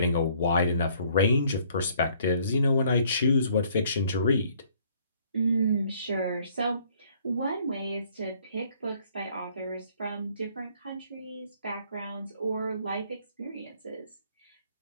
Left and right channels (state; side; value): inverted; both; correlation -0.62